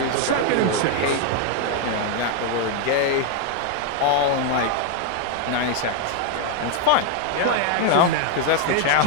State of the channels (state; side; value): different; both; correlation 0.00